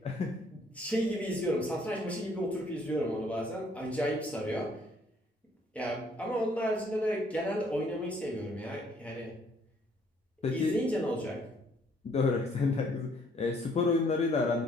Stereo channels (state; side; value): normal; both; correlation 0.64